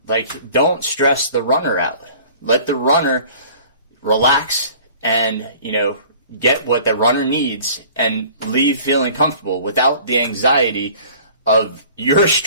don't stress the runner out. Let the runner relax and, get what the runner needs and leave feeling comfortable without the anxiety of your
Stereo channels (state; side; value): inverted; both; correlation -0.48